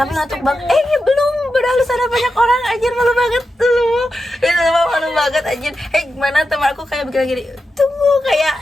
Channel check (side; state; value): both; normal; correlation 0.89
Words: ngantuk banget. Belum, padahal sana banyak orang anjir, malu banget tuh. Itu emang malu banget anjir. Gimana teman aku kayak bikin gini,